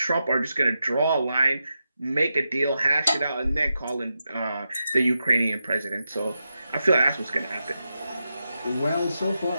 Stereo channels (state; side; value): inverted; both; correlation -0.88